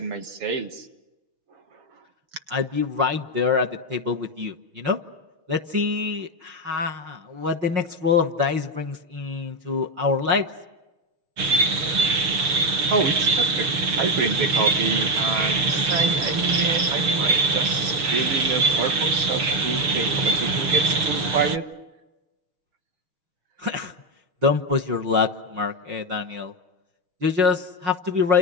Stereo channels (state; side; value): late; left; 6.9 ms